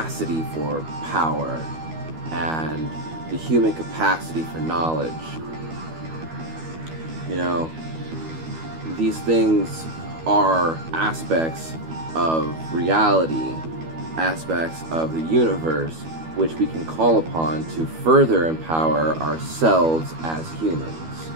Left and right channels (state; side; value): late; left; 12 ms